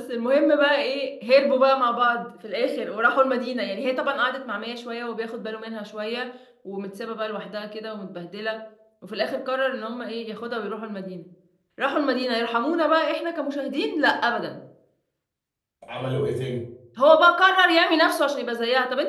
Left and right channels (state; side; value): identical; both; correlation 1.00